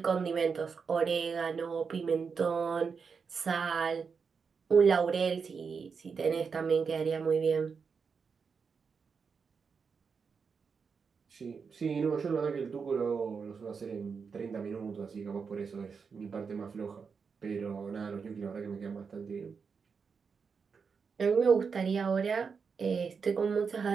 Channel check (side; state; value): left; quieter; 5.7 dB